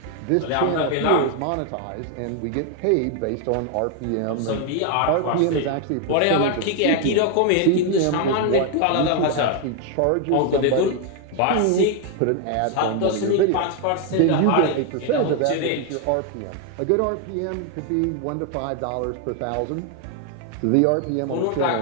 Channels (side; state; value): both; different; correlation 0.01